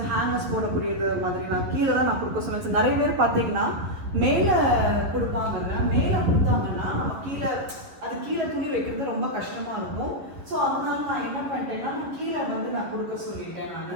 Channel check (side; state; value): left; late; 11 ms